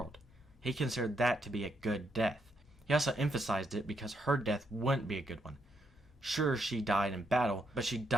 He considered that to be a good death. He also emphasized it because her death wouldn't be a good one. Sure, she died in battle, but she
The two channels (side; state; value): both; normal; correlation 0.78